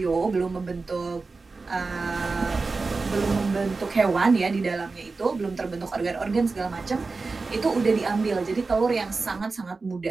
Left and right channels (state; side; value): quieter; left; 4.0 dB